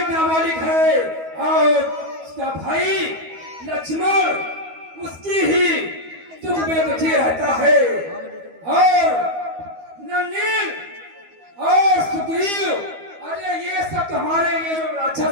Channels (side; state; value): left; late; 12 ms